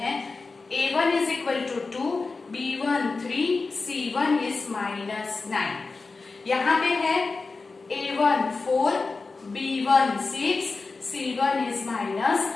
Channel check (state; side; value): quieter; right; 4.0 dB